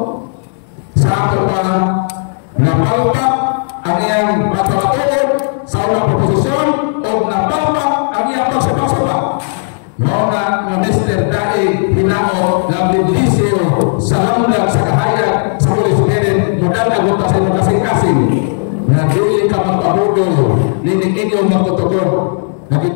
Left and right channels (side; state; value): right; silent; digital silence